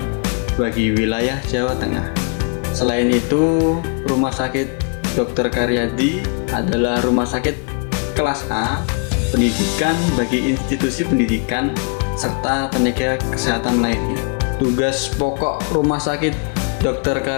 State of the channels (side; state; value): right; quieter; 36.9 dB